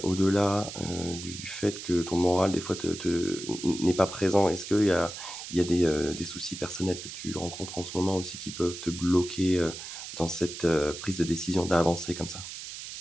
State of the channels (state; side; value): noise; right; hiss, 10 dB below the sound